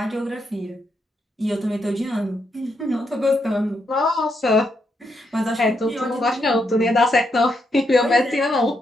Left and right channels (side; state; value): both; normal; correlation 0.80